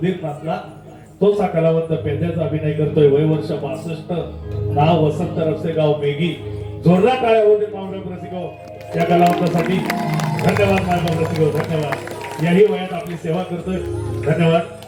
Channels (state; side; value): identical; both; correlation 1.00